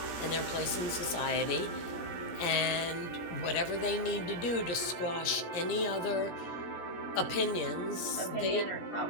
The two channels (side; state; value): right; late; 17 ms